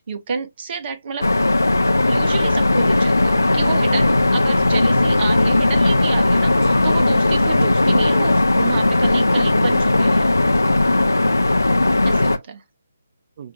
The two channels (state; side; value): inverted; both; correlation -0.96